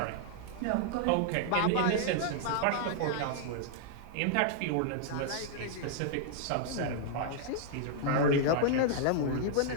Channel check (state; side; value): different; both; correlation -0.01